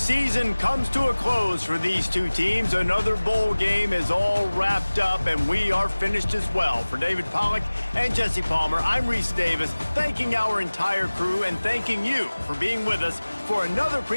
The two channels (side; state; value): both; inverted; correlation -1.00